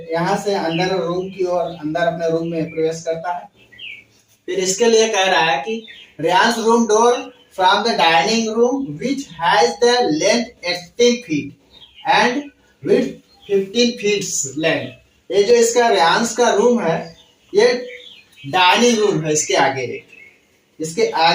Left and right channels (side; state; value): both; identical; correlation 1.00